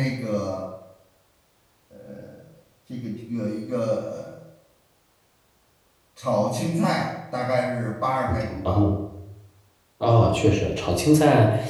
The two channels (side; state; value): both; identical; correlation 1.00